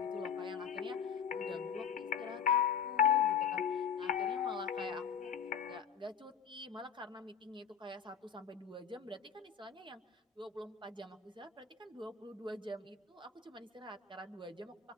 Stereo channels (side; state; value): right; quieter; 7.6 dB